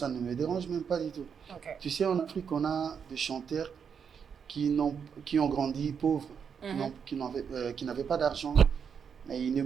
ne me dérange même pas du tout. Ok. Tu sais, en Afrique, on a des chanteurs qui ont grandi pauvres, qui n'avaient pas d'argent. Mais ils ne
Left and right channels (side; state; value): left; quieter; 6.9 dB